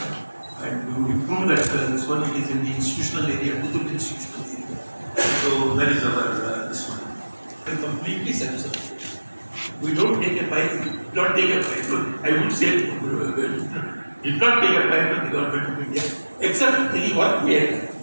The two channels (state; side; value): inverted; both; correlation -1.00